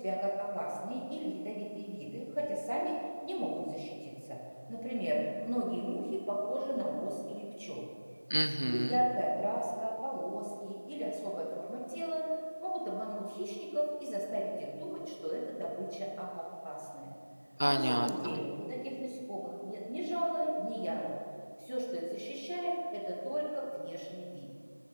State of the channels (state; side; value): inverted; both; correlation -1.00